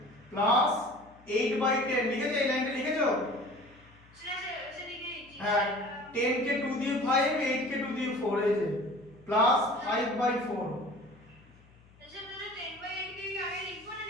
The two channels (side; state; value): left; noise; hum, 27 dB below the sound